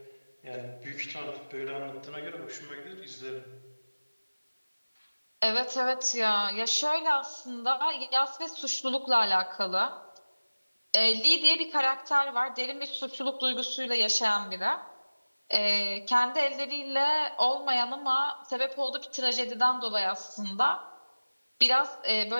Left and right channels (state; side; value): inverted; both; correlation -1.00